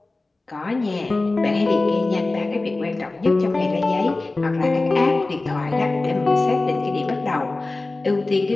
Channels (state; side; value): quieter; right; 3.2 dB